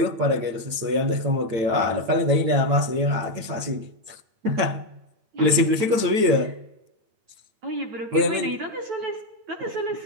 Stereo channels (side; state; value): left; late; 8.9 ms